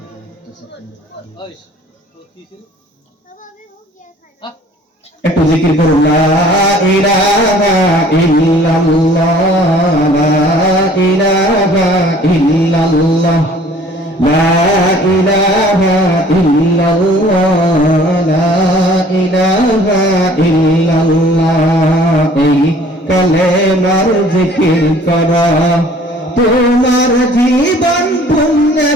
একটু জিকির করুন, লা ইলাহা ইল্লাল্লাহ, লা ইলাহা ইল্লাল্লাহ, লা ইলাহা ইল্লাল্লাহ, লা ইলাহা ইল্লাল্লাহ। এই কালেমার জিকির করা তোমার জীবন পুণ্যে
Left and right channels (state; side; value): normal; both; correlation 0.53